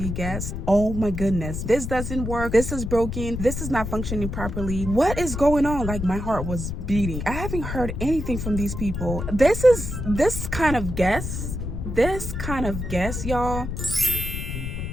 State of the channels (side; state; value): left; noise; rumble, 5 dB below the sound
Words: guest. Oh my goodness, this doesn't work. This is broken. This is not functioning properly. What is going on? Like, my heart was beating. I haven't heard anything from these people. This kind of guess, y'all.